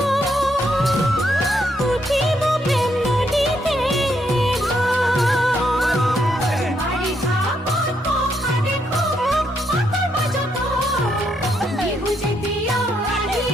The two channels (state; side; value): normal; both; correlation 0.76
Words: উঠিব প্ৰেম নদীতে বাৰিষা পকা দেখো পাতা মাজতো বিহু যেতিয়া